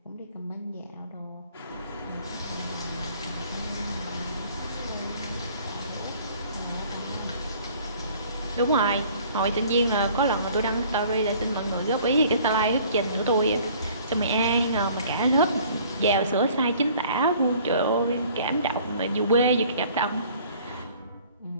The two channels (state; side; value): inverted; both; correlation -0.53